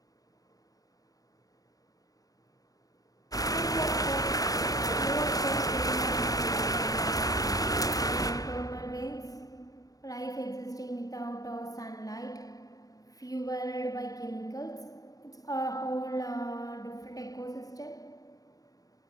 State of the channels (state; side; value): late; right; 0.18 ms